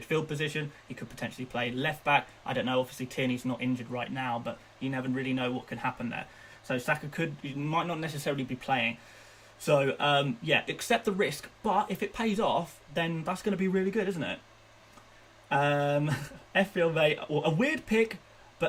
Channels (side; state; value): both; identical; correlation 1.00